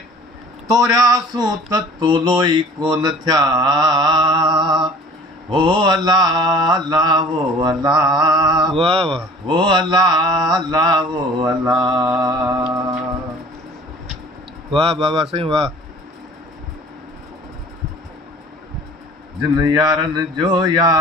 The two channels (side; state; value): both; normal; correlation 0.46